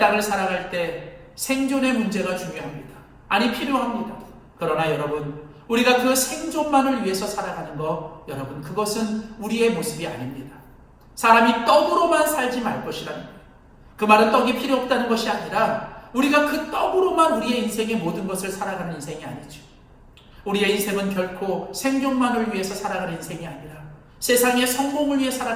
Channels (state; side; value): identical; both; correlation 1.00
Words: 살아갈 때 생존의 문제가 중요합니다. 아니 필요합니다. 그러나 여러분, 우리가 그 생존만을 위해서 살아가는 것, 여러분 그것은 우리의 모습이 아닙니다. 사람이 떡으로만 살지 말 것이라는 거예요. 그 말은 떡이 필요 없다는 것이 아니라 우리가 그 떡으로만 우리의 인생의 모든 것을 살아가는 인생이 아니죠. 우리의 인생은 결코 생존만을 위해서 살아가는 인생이 아니라 세상의 성공을 위해